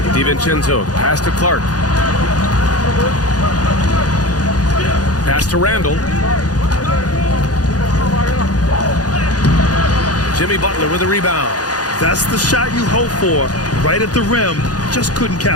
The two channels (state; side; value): late; right; 0.68 ms